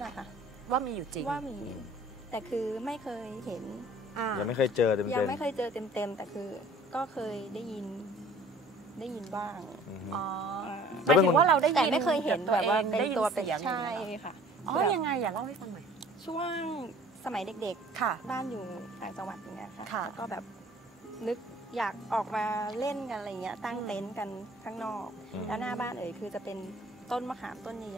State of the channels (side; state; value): both; normal; correlation 0.51